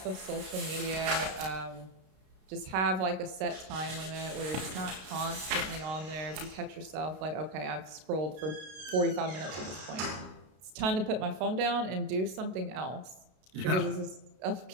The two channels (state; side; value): late; left; 32 ms